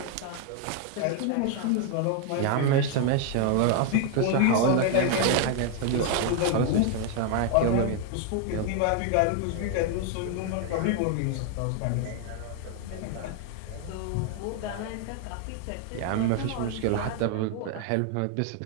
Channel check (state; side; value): different; both; correlation 0.01